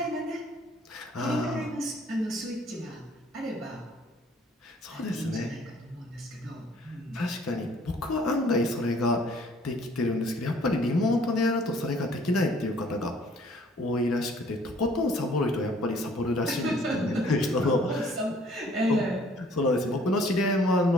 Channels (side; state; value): both; normal; correlation 0.58